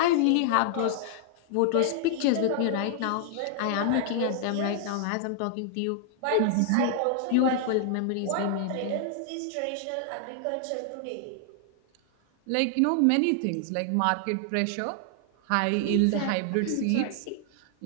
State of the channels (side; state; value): both; different; correlation 0.00